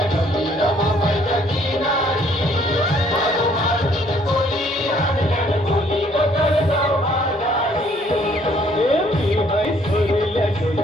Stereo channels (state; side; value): normal; both; correlation 0.63